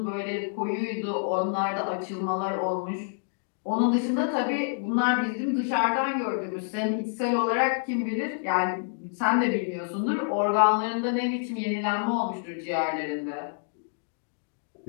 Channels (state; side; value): silent; right; digital silence